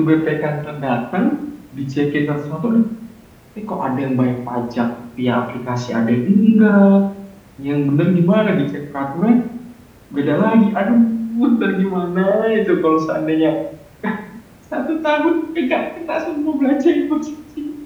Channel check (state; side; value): identical; both; correlation 1.00